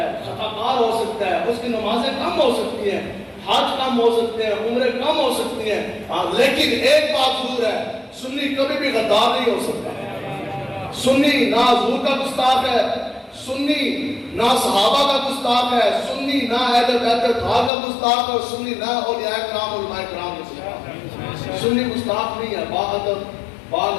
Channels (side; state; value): right; drops out; at 17.7 s